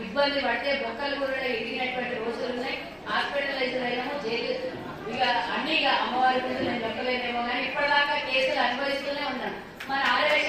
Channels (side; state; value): both; identical; correlation 1.00